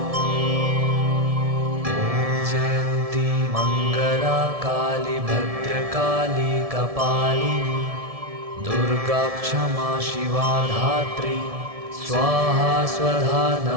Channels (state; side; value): late; left; 1.7 ms